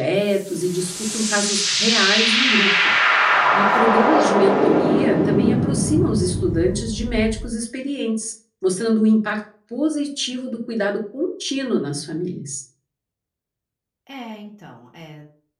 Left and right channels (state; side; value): identical; both; correlation 1.00